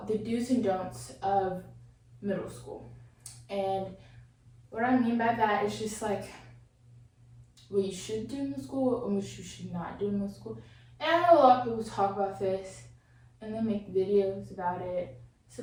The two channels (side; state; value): both; identical; correlation 1.00